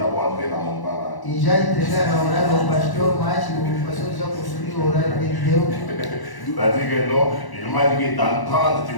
entré dans mon temps. Là. E já entregaram a horário ao pastor, mas o pastor já construiu o horário que ele deu. C'est-à-dire que non, il m'a dit que dans 30, tu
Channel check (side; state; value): right; late; 1.0 ms